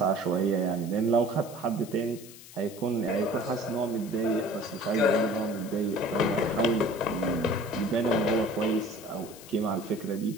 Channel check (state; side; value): noise; left; hiss, 18 dB below the sound